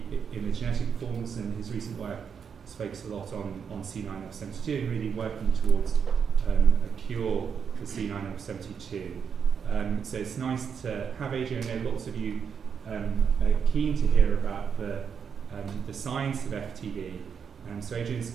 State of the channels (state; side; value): quieter; left; 6.8 dB